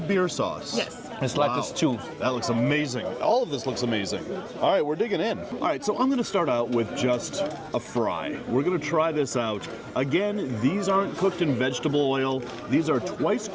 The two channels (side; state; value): both; identical; correlation 1.00